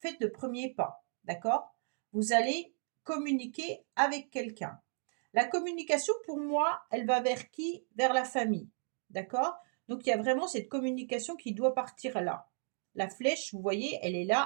le premier pas. D'accord? Vous allez communiquer avec quelqu'un. La communication, pour moi, elle va vers qui? Vers la famille. D'accord? Donc il y a vraiment cette communication qui doit partir là. La flèche, vous voyez, elle est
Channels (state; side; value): silent; left; 55 dB below the other